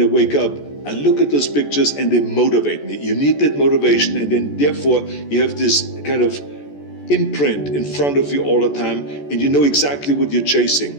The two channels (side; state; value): right; late; 14 ms